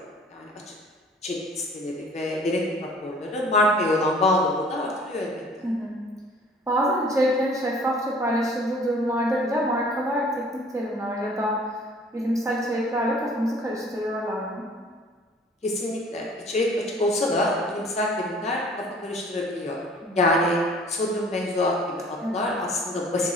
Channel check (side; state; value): both; normal; correlation 0.52